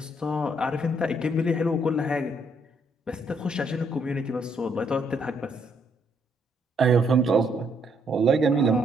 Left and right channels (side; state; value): both; normal; correlation 0.71